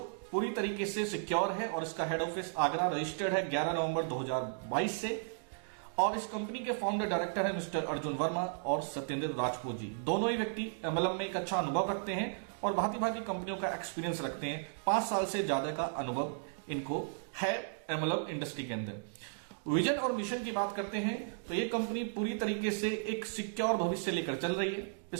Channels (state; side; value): silent; left; digital silence